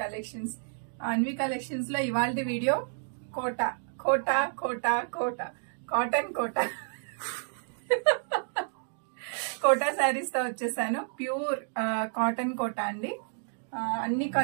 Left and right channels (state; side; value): silent; left; digital silence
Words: collections. Anvi collections లో ఇవాల్టి వీడియో కోట కోట కోట కోట కాటన్ కోట కోటా శారీస్ తో వచ్చేసాను. ప్యూర్ కాటన్ కోట అండి. అన్ని